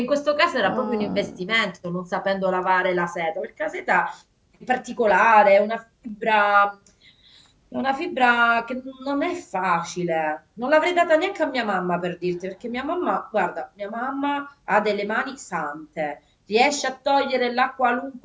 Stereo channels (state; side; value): identical; both; correlation 1.00